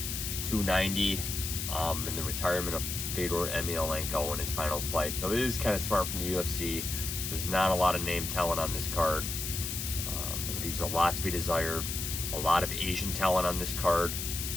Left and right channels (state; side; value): noise; left; hiss, 4 dB below the sound